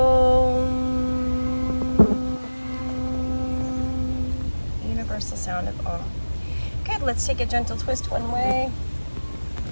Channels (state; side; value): inverted; both; correlation -1.00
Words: Universal sound of Om. Good, let's take a gentle twist one way.